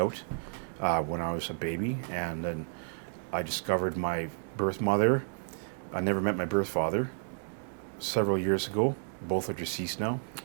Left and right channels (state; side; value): silent; left; digital silence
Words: when I was a baby, and then I discovered my birth mother. I never met my birth father. Several years ago. Both are deceased now.